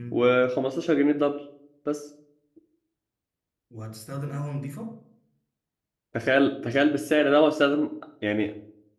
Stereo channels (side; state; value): both; identical; correlation 1.00